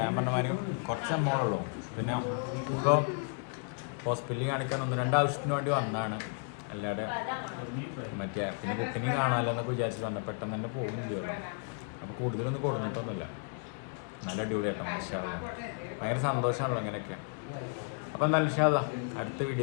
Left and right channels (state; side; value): quieter; right; 38.3 dB